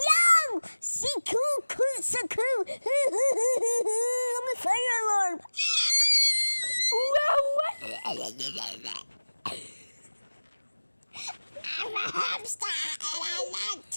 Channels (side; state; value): both; inverted; correlation -1.00